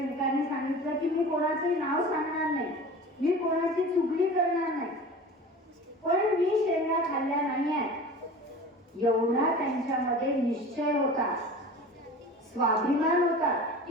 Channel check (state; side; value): normal; both; correlation 0.37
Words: सांगितलं की मी कोणाचंही नाव सांगणार नाही, मी कोणाची चुगली करणार नाही, पण मी शेंगा खाल्ल्या नाहीये. एवढा त्यांच्यामध्ये निश्चय होता, स्वाभिमान होता